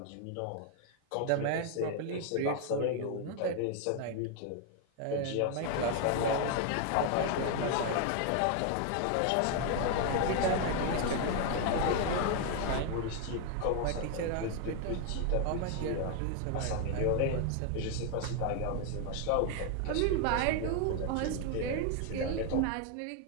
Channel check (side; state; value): both; different; correlation 0.00